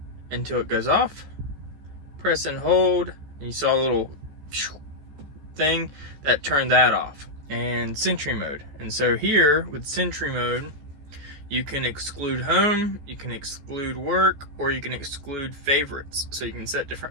until it goes off. Press and hold, and you saw a little thing that turned that off. And Sentry Mode. And so here with Sentry Mode, you can exclude home, you can exclude work, or you can exclude favorites. So you can set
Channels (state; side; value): late; left; 14 ms